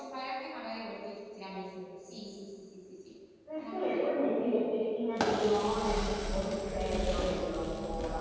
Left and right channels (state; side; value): identical; both; correlation 1.00